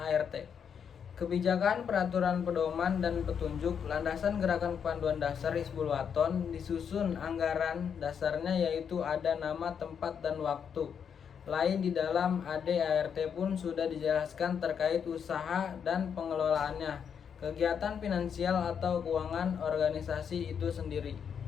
Kebijakan, peraturan pedoman, dan petunjuk landasan gerakan kepanduan dasar Hizbul Waton disusun anggaran dasarnya, yaitu ada nama, tempat, dan waktu. Lain di dalam AD ART pun sudah dijelaskan terkait usaha dan pengelolaannya, kegiatan finansial atau keuangan organisasi itu sendiri.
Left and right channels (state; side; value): quieter; right; 7.4 dB